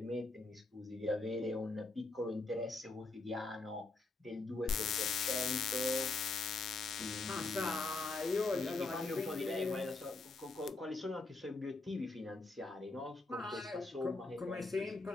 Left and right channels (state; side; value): quieter; right; 3.4 dB